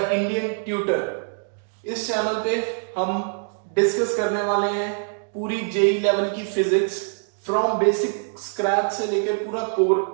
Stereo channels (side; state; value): left; silent; digital silence